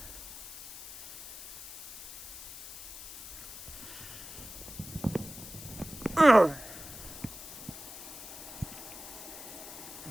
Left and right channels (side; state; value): left; noise; hiss, 11 dB below the sound